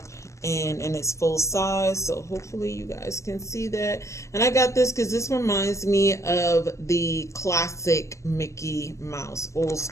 and in its full size. So hopefully you guys can see that. And I got this because this reminds me of the classic Mickey Mouse, old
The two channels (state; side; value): late; right; 0.14 ms